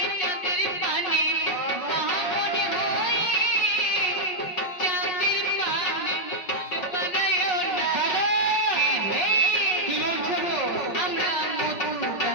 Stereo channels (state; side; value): late; right; 5.5 ms